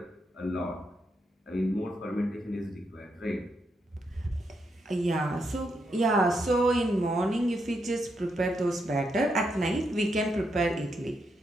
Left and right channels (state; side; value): normal; both; correlation 0.81